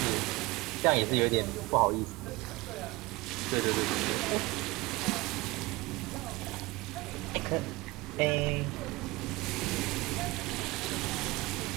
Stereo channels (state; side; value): quieter; left; 21.8 dB